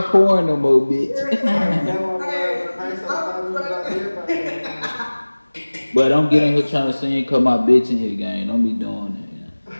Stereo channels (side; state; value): both; inverted; correlation -1.00